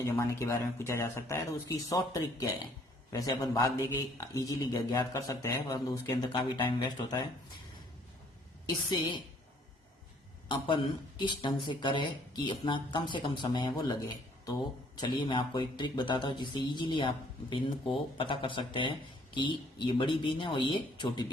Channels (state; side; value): normal; both; correlation 0.62